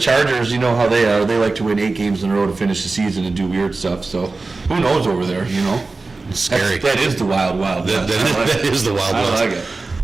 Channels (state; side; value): quieter; left; 3.7 dB